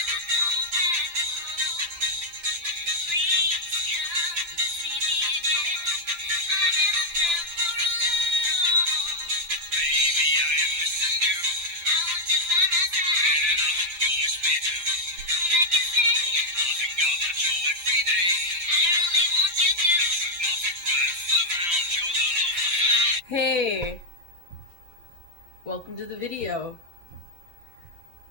Hey, welcome to the video.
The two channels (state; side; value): late; left; 5.8 ms